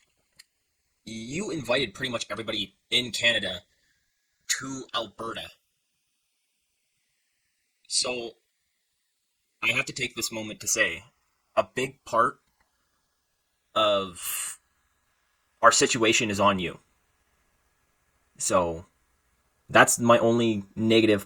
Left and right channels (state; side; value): identical; both; correlation 1.00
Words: You invited pretty much everybody in Canada to Alberta. So I have to take this moment to say a big part of our situation is on you. So that's my only